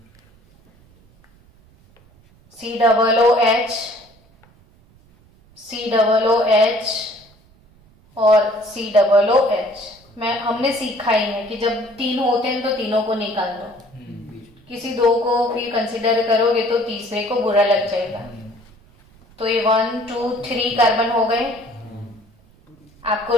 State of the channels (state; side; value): noise; right; rumble, 29 dB below the sound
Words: COOH और COOH। हमने सीखा ही है कि जब 3 होते हैं तो तीनों को निकाल दो, किसी 2 को फिर कंसिडर करोगे तो तीसरे को बुरा लग जाएगा। तो ये 1 2 3 कार्बन हो गए। आपको